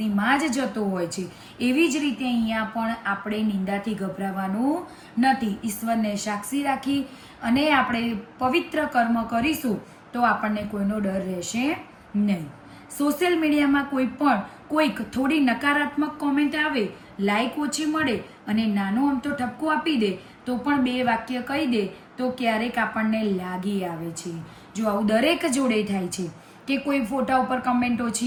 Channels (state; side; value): identical; both; correlation 1.00